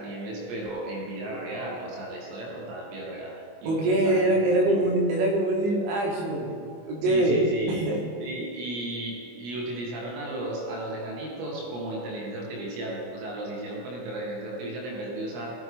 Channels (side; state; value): left; late; 25 ms